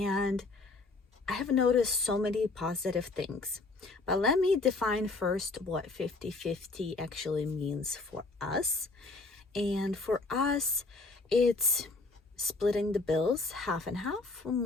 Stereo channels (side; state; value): right; quieter; 3.5 dB